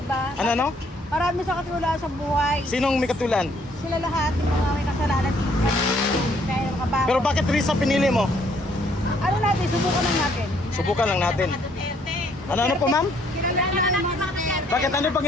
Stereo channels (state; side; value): normal; both; correlation 0.66